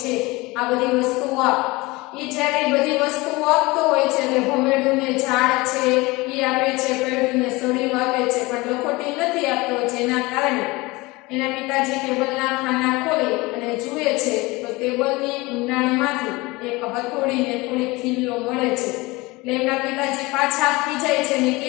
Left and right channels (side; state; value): right; quieter; 22.6 dB